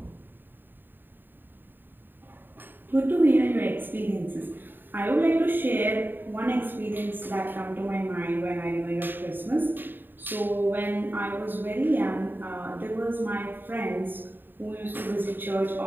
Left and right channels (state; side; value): late; left; 0.093 ms